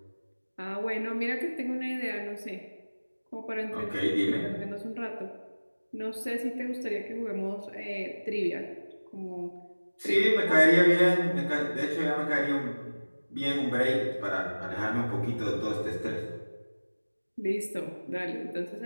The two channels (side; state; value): both; inverted; correlation -1.00